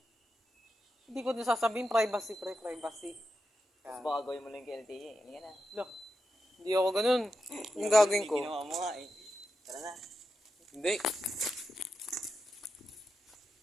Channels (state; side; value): normal; both; correlation 0.88